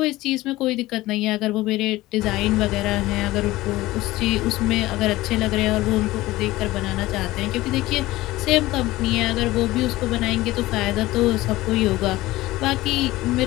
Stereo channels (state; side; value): quieter; right; 18.0 dB